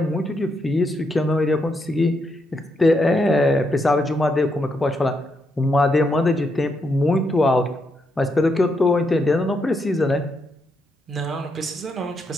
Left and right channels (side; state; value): both; normal; correlation 0.80